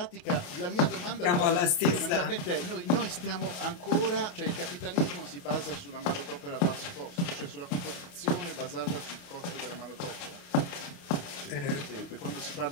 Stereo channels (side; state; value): right; late; 28 ms